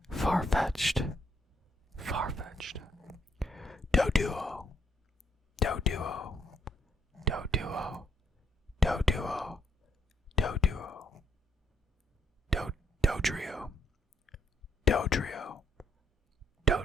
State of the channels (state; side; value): normal; both; correlation 0.72